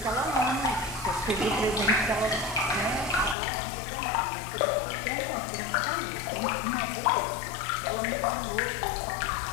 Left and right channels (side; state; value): right; drops out; at 3.4 s